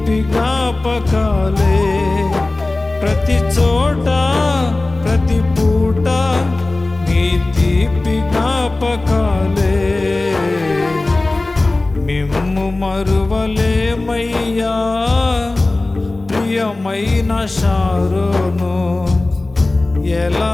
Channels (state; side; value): quieter; right; 3.0 dB